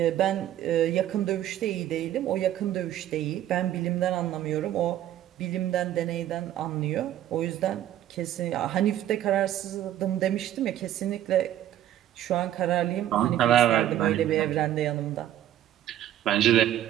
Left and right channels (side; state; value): left; quieter; 12.2 dB